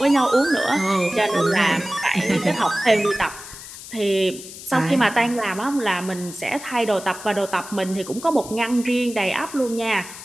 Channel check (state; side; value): noise; left; hiss, 14 dB below the sound